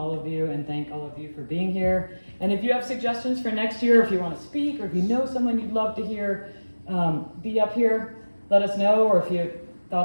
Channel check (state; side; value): inverted; both; correlation -1.00